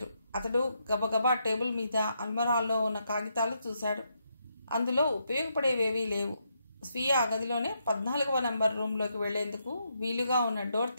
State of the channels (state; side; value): inverted; both; correlation -0.79